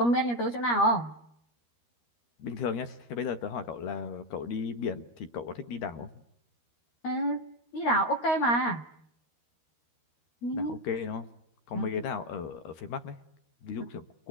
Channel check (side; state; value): right; late; 13 ms